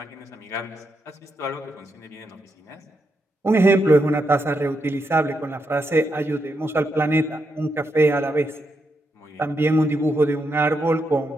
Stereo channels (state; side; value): normal; both; correlation 0.83